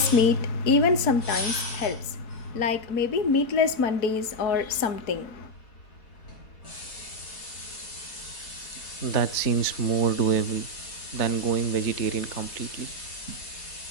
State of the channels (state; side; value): late; right; 4.0 ms